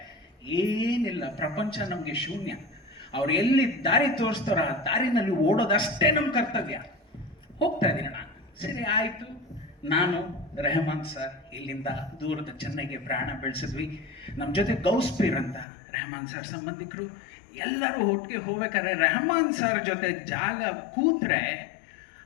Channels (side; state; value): right; drops out; at 15.7 s